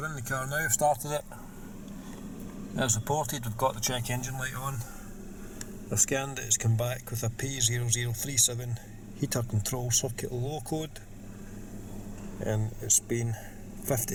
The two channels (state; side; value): identical; both; correlation 1.00